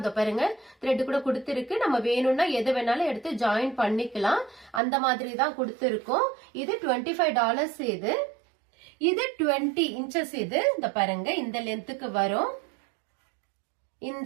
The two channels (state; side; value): drops out; left; at 4.8 s